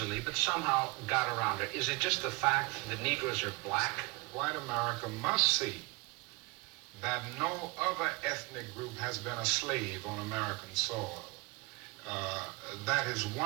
but somehow got around it. Is it just the fact that Negroes are black? White America must see that no other ethnic group has been a slave on American soil. That is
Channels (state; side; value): quieter; left; 27.0 dB